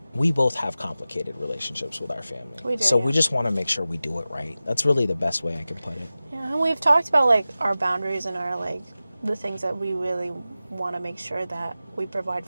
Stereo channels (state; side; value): inverted; both; correlation -0.95